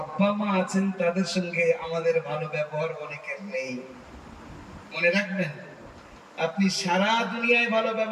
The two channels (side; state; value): both; identical; correlation 1.00